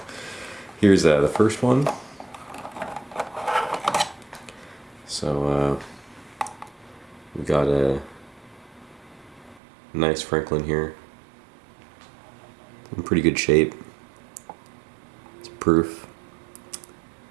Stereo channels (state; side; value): drops out; left; at 9.6 s